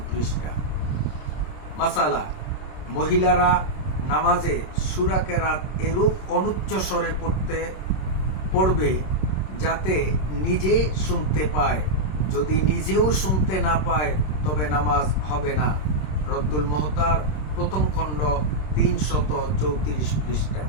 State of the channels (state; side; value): late; right; 26 ms